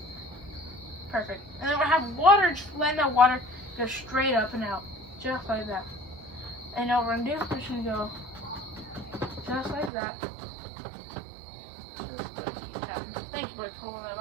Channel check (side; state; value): left; drops out; at 9.9 s